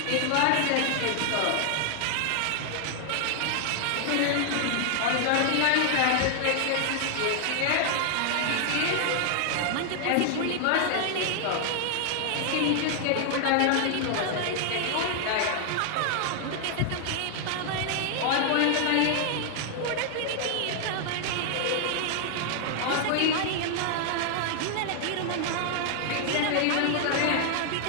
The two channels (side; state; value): both; different; correlation 0.00